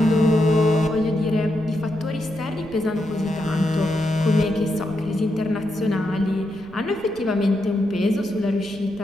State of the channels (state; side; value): noise; right; rumble, 23 dB below the sound